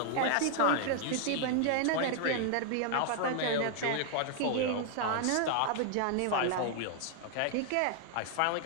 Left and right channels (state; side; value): different; both; correlation 0.00